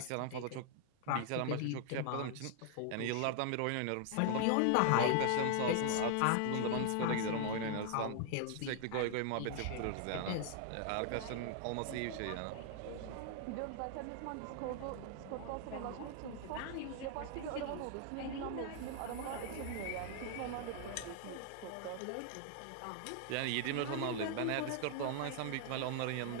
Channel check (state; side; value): different; both; correlation 0.00